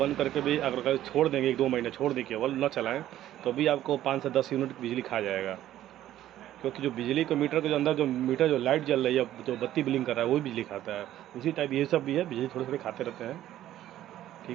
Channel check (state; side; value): quieter; left; 12.9 dB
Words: करके भी अगर छोड़ देंगे 1-2 महीने छोड़ दें, केवल न चलाएं, तो भी आपको 5 से 10 यूनिट बिजली खा जाएगा, क्योंकि जो बिजली को मीटर के जो अंदर जो मीटर जो लाइट जल रही है, जो बत्ती ब्लिंक कर रहा है, वो भी बिजली खाता है। उसी टाइप ये सब भी है, बिजली थोड़े थोड़े खाते रहते हैं,